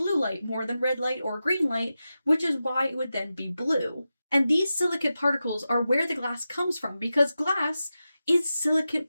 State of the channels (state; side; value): inverted; both; correlation -0.92